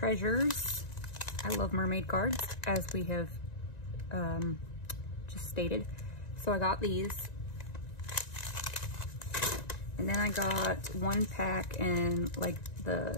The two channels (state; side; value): late; right; 1.9 ms